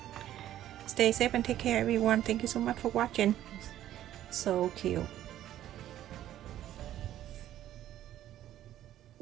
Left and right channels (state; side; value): quieter; left; 12.4 dB